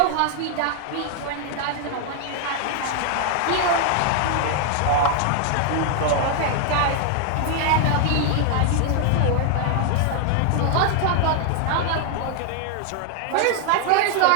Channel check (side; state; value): both; different; correlation 0.00